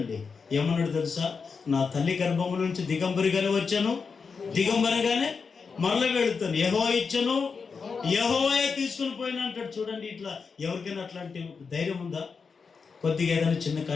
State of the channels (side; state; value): right; quieter; 5.3 dB